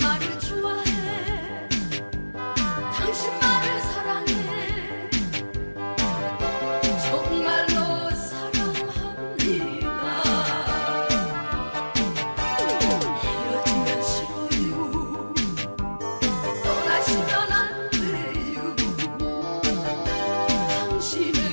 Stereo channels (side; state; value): both; inverted; correlation -1.00